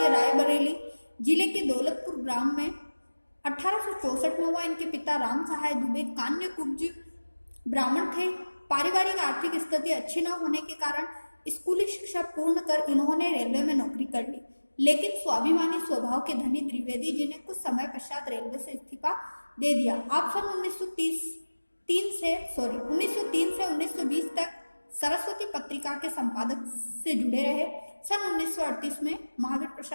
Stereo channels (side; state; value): both; inverted; correlation -1.00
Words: रायबरेली जिले के दौलतपुर ग्राम में 1864 में हुआ। इनके पिता राम सहाय दुबे कान्य कुब्ज ब्राह्मण थे। पारिवारिक आर्थिक स्थिति अच्छी न होने के कारण स्कूली शिक्षा पूर्ण कर इन्होंने रेलवे में नौकरी कर ली, लेकिन स्वाभिमानी स्वभाव के धनी द्विवेदी जी ने कुछ समय पश्चात रेलवे से इस्तीफा दे दिया। आप सन 1903 से 1920 तक सरस्वती पत्रिका के संपादक से जुड़े रहे। सन 1938 में महावीर